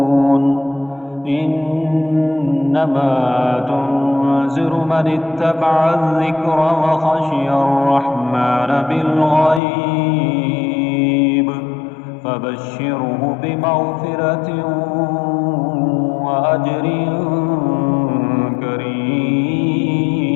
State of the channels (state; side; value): drops out; right; at 9.6 s